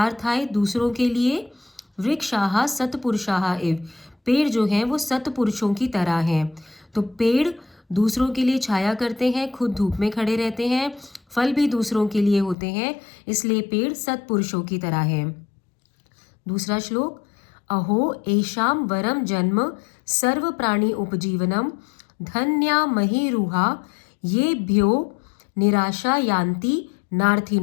दूसरों के लिए। वृक्षाः सत्पुरुषाः एव, पेड़ जो हैं वो सत्पुरुषों की तरह हैं। तो पेड़ दूसरों के लिए छाया करते हैं, खुद धूप में खड़े रहते हैं, फल भी दूसरों के लिए होते हैं, इसलिए पेड़ सत्पुरुषों की तरह है। दूसरा श्लोक, अहो एषाम वरम जन्म सर्व प्राणी उपजीवनम धन्या महीरुहा ये भ्यो निराशा यान्ति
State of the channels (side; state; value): right; drops out; at 12.6 s